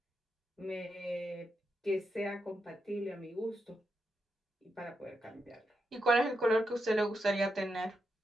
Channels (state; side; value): normal; both; correlation 0.84